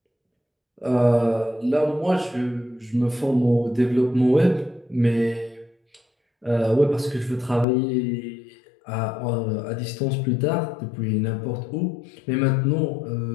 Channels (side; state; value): right; drops out; at 7.7 s